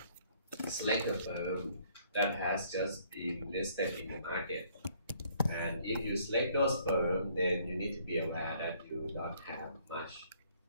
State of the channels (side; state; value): both; inverted; correlation -0.63